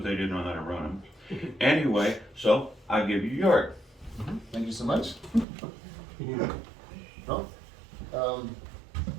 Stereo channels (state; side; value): drops out; left; at 5.5 s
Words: they didn't know how to run them. Anyway, so I'll give you Jörg. Thank you so much. Well,